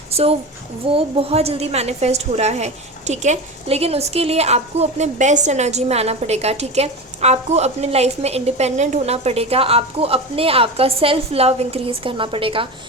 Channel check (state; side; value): normal; both; correlation 0.25